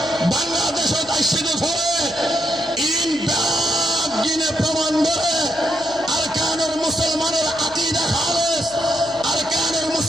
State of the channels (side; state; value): left; noise; hum, 22 dB below the sound